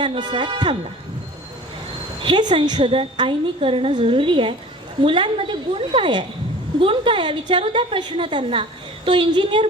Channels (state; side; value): normal; both; correlation 0.43